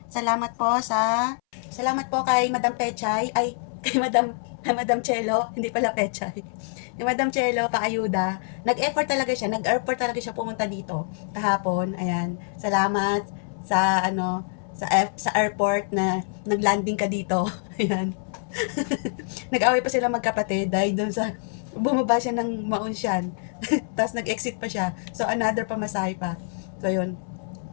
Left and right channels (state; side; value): silent; right; 61 dB below the other